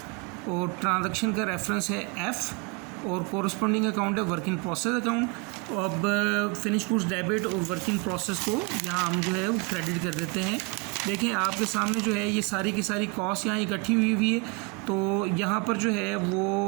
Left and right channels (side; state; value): left; quieter; 30.1 dB